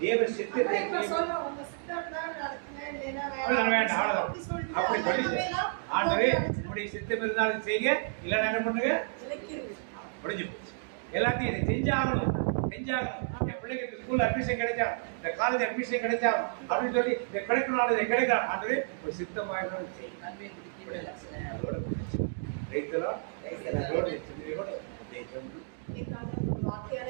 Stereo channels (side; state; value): left; silent; digital silence